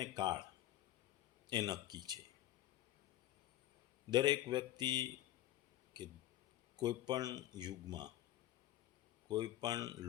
કાળ એ નક્કી છે. દરેક વ્યક્તિ કે કોઈ પણ યુગમાં, કોઈ પણ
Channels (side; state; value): right; quieter; 13.8 dB